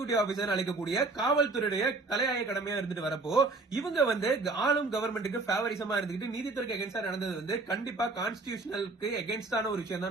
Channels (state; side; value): quieter; left; 3.5 dB